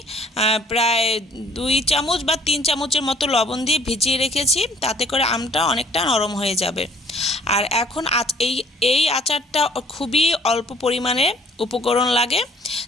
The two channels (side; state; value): both; normal; correlation 0.56